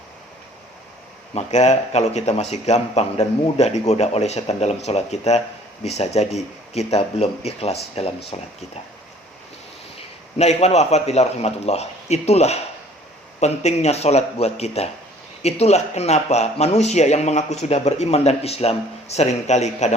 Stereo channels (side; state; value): both; normal; correlation 0.54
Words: Maka kalau kita masih gampang dan mudah digoda oleh setan dalam sholat kita, bisa jadi kita belum ikhlas dalam sholat kita. Nah, ikhwan wa akhwat fillah rahimatullah, itulah pentingnya sholat buat kita. Itulah kenapa manusia yang mengaku sudah beriman dan Islam seringkali